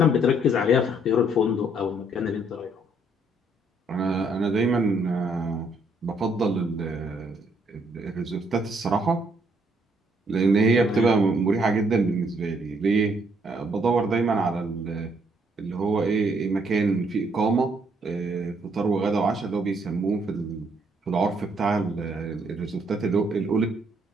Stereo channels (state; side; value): normal; both; correlation 0.69